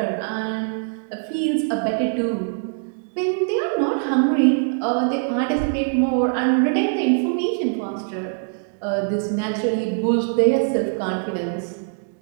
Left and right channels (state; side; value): silent; left; digital silence